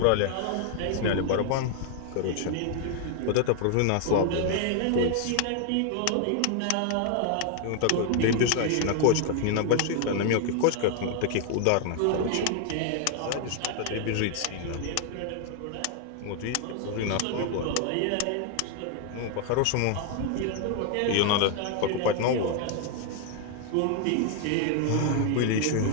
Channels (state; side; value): different; both; correlation 0.00